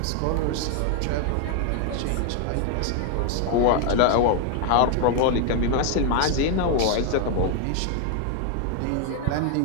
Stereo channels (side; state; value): both; different; correlation 0.00